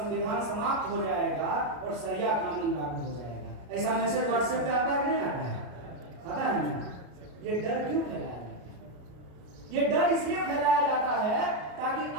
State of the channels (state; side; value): late; left; 33 ms